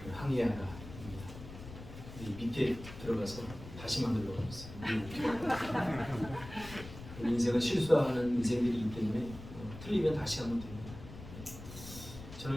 항해하라. 밑에 들어가서 다시 만들려고 했어요. 우리 인생은 실수하는 인생들이기 때문에 틀리면 다시 하면 됩니다.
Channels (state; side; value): noise; left; rumble, 13 dB below the sound